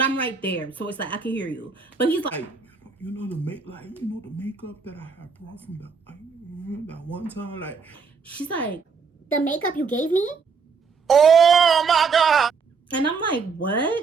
right there, so it's like I can hear you. But he's like, you know the makeup that I had brought from that one time, like. She's like, The makeup you gave me? Oh my God! and I'm like,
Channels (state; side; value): quieter; left; 5.3 dB